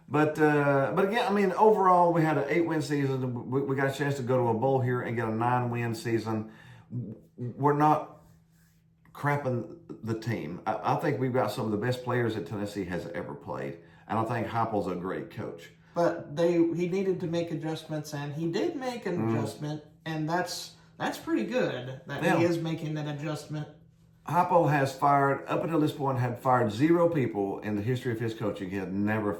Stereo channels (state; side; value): identical; both; correlation 1.00